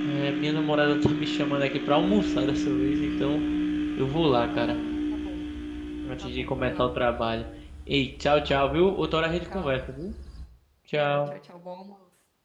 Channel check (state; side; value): identical; both; correlation 1.00